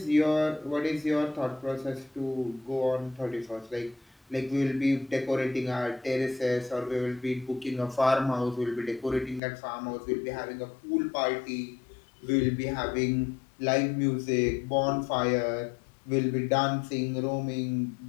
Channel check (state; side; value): drops out; right; at 9.4 s